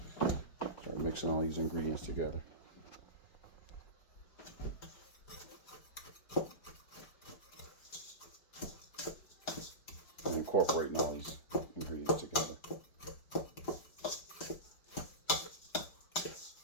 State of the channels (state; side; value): late; right; 5.1 ms